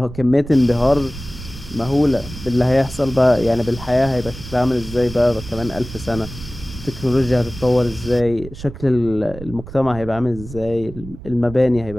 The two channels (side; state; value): right; noise; rumble, 14 dB below the sound